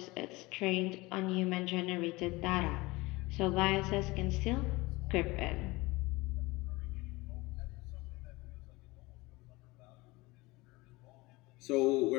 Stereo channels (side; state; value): right; quieter; 22.2 dB